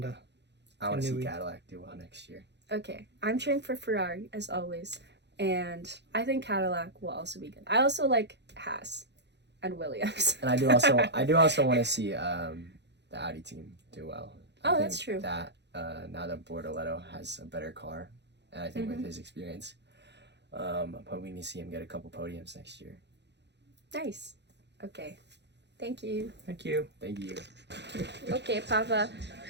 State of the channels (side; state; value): left; late; 0.50 ms